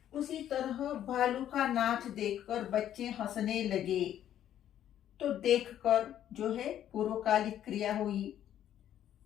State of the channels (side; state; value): right; quieter; 11.0 dB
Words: उसी तरह भालू का नाच देखकर बच्चे हंसने लगे, तो देखकर जो है पूर्वकालिक क्रिया हुई।